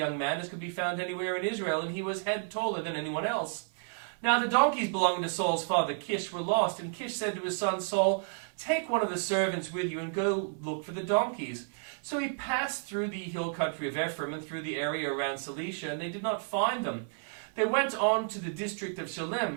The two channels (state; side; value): silent; left; 57 dB below the other